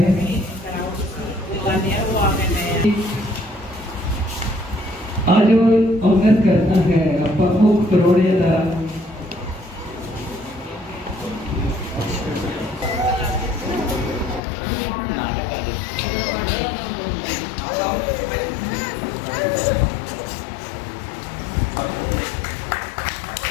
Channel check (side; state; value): right; drops out; at 14.4 s